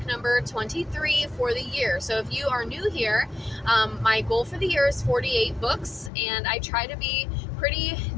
number 23 for the year. So if you are new here, my goal for the year is 48 books, and I try to be pretty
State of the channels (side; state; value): right; drops out; at 6.1 s